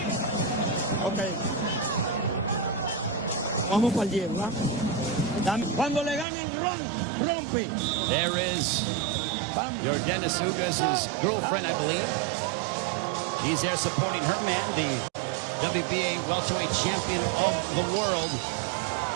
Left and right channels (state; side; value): drops out; left; at 6.2 s